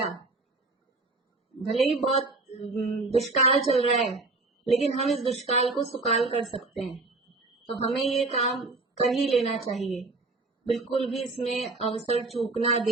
भले ही बहुत दुष्काल चल रहा है, लेकिन हम इस दुष्काल को सुकाल कर सकते हैं। तो हमें ये काम कर ही लेना चाहिए। बिल्कुल भी इसमें अवसर चूकना,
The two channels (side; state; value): left; quieter; 3.4 dB